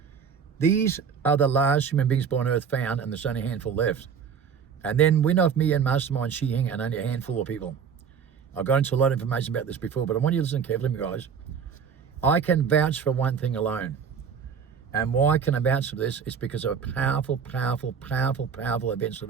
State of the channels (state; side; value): quieter; left; 6.8 dB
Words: These are the last human beings born on Earth found, and there's only a handful left. And then Win Off Me and Mastermind Shi Hing, and only a handful of people. I've got into a lot of information about this before, but I want you to listen carefully, guys. I can vouch for one thing alone. And why can I vouch for this? It's because of powerful, powerful, powerful, powerful events that